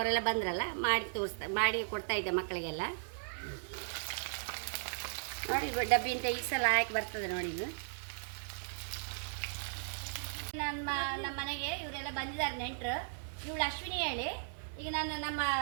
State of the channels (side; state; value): left; silent; digital silence